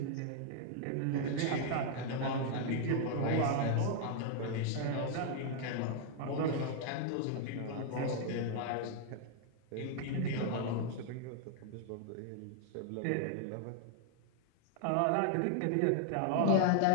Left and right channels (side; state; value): both; different; correlation 0.00